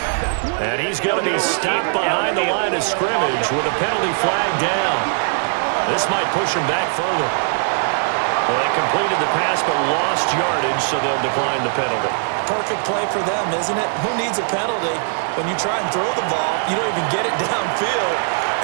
And he's going to be stopped behind the line of scrimmage with a penalty flag down. This might push him back further. Well, they completed the pass but lost yardage, so they'll decline the penalty. Perfect play for them, isn't it? Who needs a penalty when you try and throw the ball, you don't even get it downfield,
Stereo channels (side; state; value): left; silent; 57 dB below the other